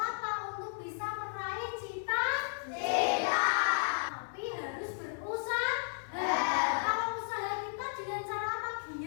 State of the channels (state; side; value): silent; right; digital silence